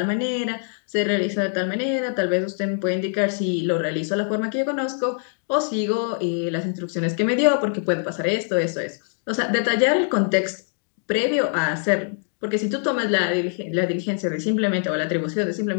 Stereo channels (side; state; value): right; silent; 61 dB below the other